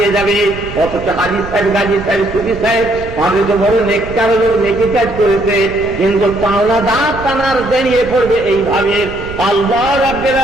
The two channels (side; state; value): right; noise; rumble, 13 dB below the sound